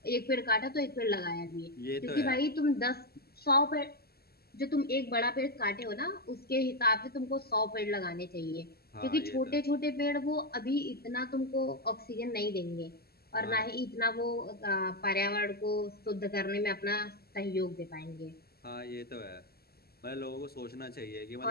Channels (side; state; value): right; late; 0.46 ms